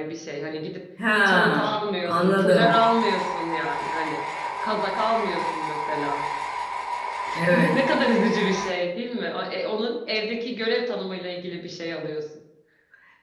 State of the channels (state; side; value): identical; both; correlation 1.00